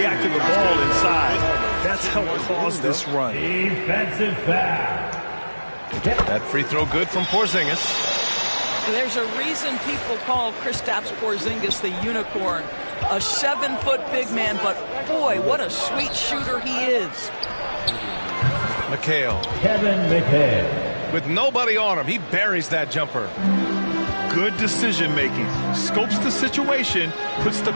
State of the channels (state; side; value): inverted; both; correlation -1.00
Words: to the ball inside. That's helped cause this run. Defensive foul. That free throw good from Porzingis. There's a reason people call Kristaps Porzingis the unicorn. A 7-foot big man, but boy, what a sweet shooter he is. McHale. Kevin McHale. With nobody on him, he buries that jumper. Good decision making. Scopes the situation, puts the